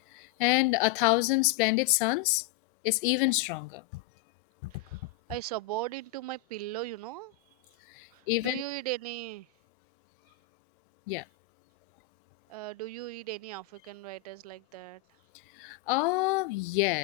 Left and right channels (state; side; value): quieter; right; 10.7 dB